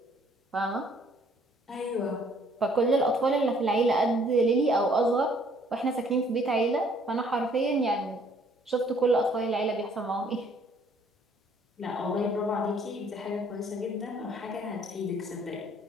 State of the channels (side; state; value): both; normal; correlation 0.61